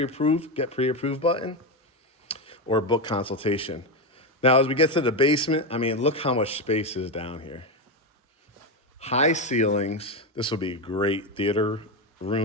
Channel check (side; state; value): both; normal; correlation 0.11